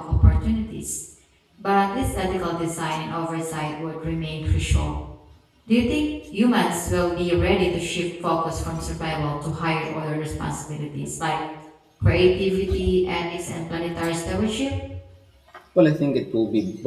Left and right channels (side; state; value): both; identical; correlation 1.00